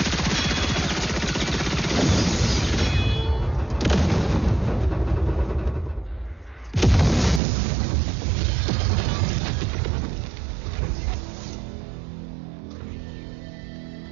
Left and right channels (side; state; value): left; drops out; at 7.4 s